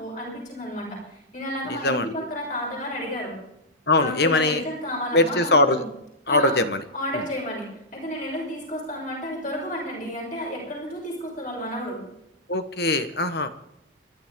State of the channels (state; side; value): normal; both; correlation -0.11